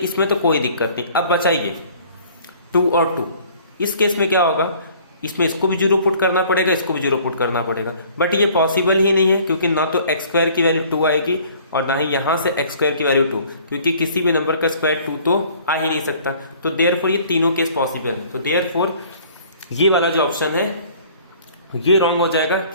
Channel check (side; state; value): both; inverted; correlation -0.54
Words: तो कोई दिक्कत नहीं। अब बचा ये 2 और 2। इस केस में क्या होगा? इसमें इसको भी 0 पुट करना पड़ेगा, इसको भी 0 पुट करना पड़ेगा, बट ये पॉसिबल ही नहीं है, क्योंकि ना तो एक्स स्क्वायर की वैल्यू 2 आएगी और ना ही यहां से एक्स स्क्वायर की वैल्यू 2, क्योंकि किसी भी नंबर का स्क्वायर 2 तो आ ही नहीं सकता। तो देयरफॉर ये तीनों केस पॉसिबल है। तो देयरफॉर ये वाला जो ऑप्शन है ये रॉन्ग हो जाएगा